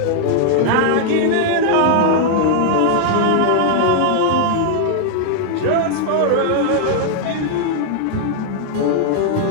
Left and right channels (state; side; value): different; both; correlation -0.01